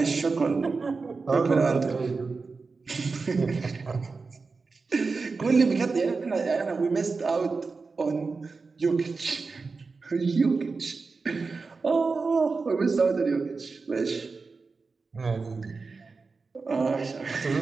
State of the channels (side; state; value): left; quieter; 4.3 dB